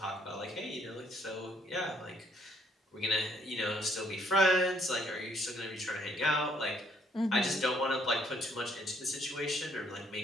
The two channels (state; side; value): normal; both; correlation 0.67